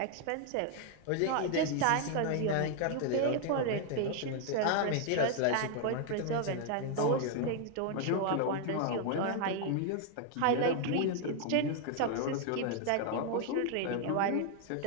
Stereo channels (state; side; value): different; both; correlation 0.00